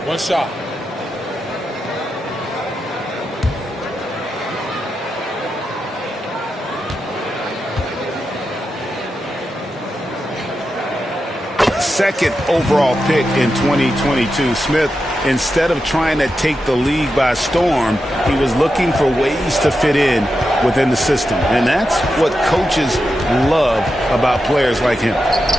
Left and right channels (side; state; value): both; normal; correlation 0.88